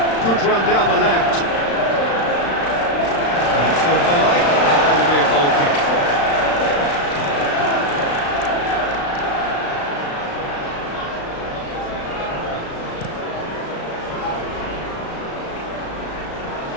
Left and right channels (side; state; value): right; late; 35 ms